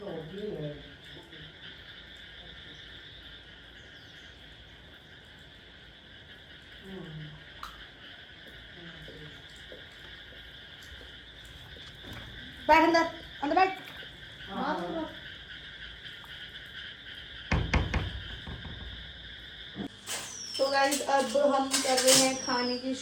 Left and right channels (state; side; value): identical; both; correlation 1.00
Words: बैठ अंदर, अंदर बैठ। तो गाइस अब हम कर रहे हैं खाने की